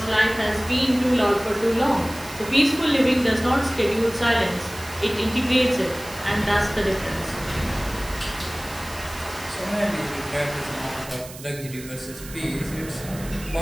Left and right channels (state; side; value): noise; right; hiss, 15 dB below the sound